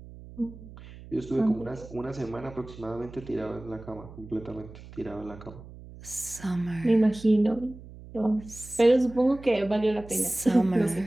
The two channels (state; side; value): noise; right; hum, 17 dB below the sound